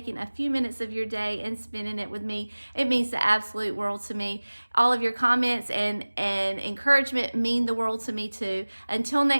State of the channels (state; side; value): inverted; both; correlation -1.00